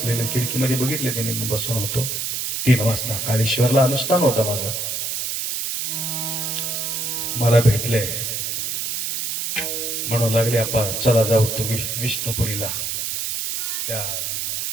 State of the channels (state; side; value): noise; right; hiss, 2 dB below the sound